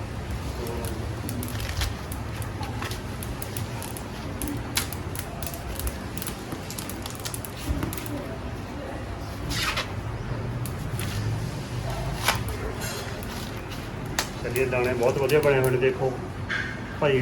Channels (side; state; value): both; identical; correlation 1.00